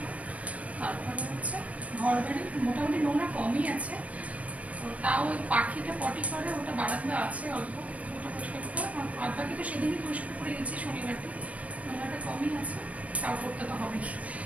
তারপরে ঘর বাড়ি মোটামুটি নোংরা কমই আছে, তো তাও ওই পাখিটা পটি করে ওটা বারান্দা আছে অল্প, ওটা পরিষ্কার করতে হয়। আর বাকি তো সেদিনই পরিষ্কার করে গেছি শনিবারটি, নোংরাটা কমই আছে, তাও করতে তো হবেই।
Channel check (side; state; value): left; late; 0.066 ms